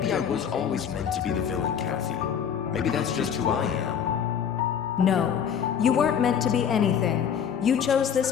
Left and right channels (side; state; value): right; quieter; 8.0 dB